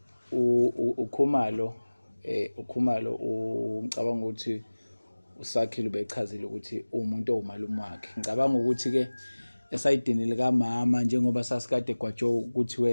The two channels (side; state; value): both; inverted; correlation -1.00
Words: ukhumalo ngicabanga ukuthi usakhile ubechazile ukuthi umuntu owumalume wakhe ngicabanga ukuthi ke esayidini lika mama njengoba sasikade gwajo ukuthi